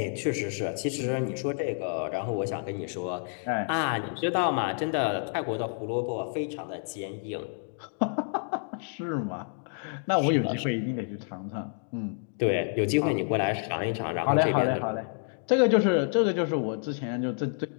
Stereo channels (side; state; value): right; silent; 59 dB below the other